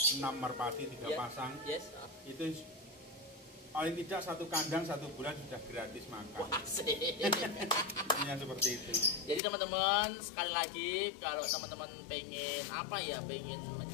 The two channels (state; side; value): drops out; right; at 9.4 s